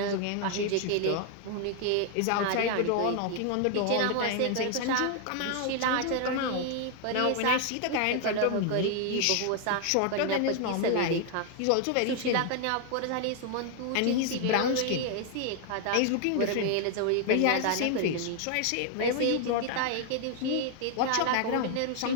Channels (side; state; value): both; different; correlation 0.00